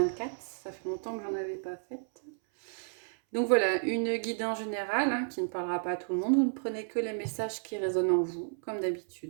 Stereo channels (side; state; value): left; silent; 56 dB below the other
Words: Ça fait longtemps que j'en avais pas faite. Donc voilà, une guidance générale qui ne parlera pas à tout le monde. Vous ne prenez que les messages qui résonnent en vous, comme